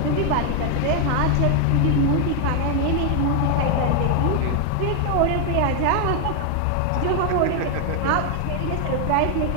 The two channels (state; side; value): different; both; correlation 0.00